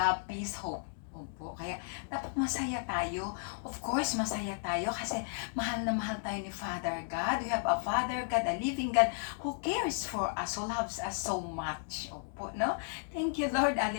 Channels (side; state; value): right; silent; digital silence